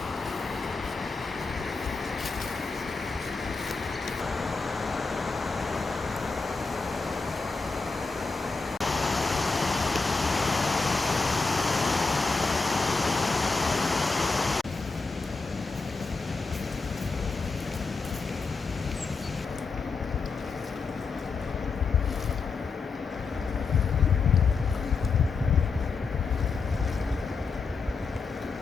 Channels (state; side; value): quieter; right; 4.4 dB